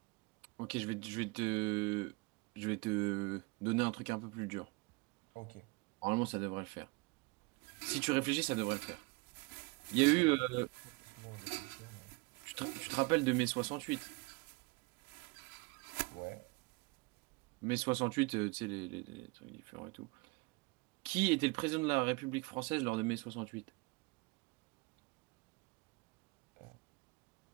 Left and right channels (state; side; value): quieter; left; 26.5 dB